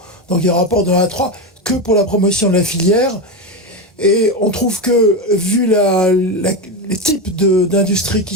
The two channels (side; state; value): both; normal; correlation 0.15